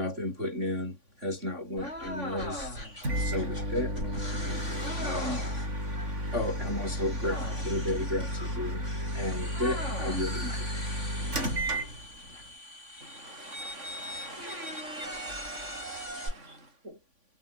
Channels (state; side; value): late; left; 3.5 ms